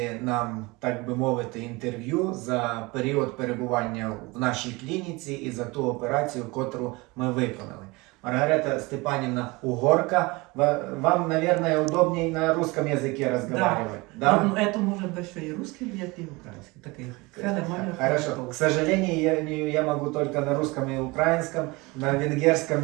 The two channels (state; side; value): quieter; left; 24.1 dB